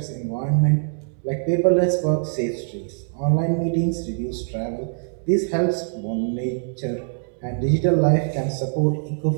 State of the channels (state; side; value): silent; left; digital silence